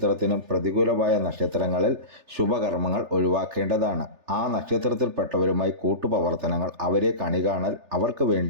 പ്രതികൂലമായ നക്ഷത്രങ്ങളിൽ ശുഭകർമ്മങ്ങൾ ഒഴിവാക്കേണ്ടതാണ്. ആ നക്ഷത്രത്തിൽപ്പെട്ടവരുമായി കൂട്ടുപ്രവർത്തനങ്ങൾ, അവരെ കണികാണൽ, അവർക്ക്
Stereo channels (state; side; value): late; left; 3.3 ms